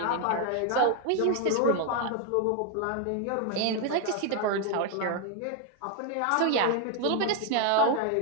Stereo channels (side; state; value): both; different; correlation 0.01